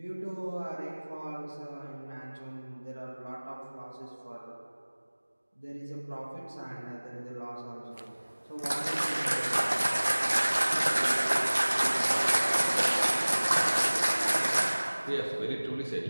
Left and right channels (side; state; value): both; inverted; correlation -1.00